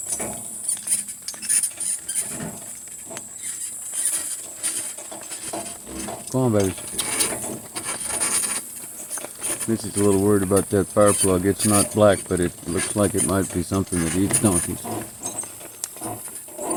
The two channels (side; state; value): both; identical; correlation 1.00